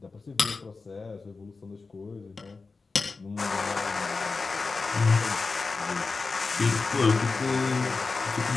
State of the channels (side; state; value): right; quieter; 4.1 dB